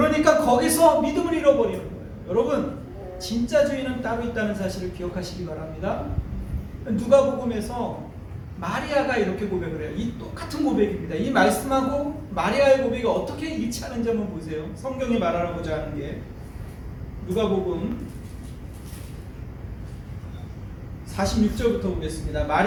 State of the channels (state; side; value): identical; both; correlation 1.00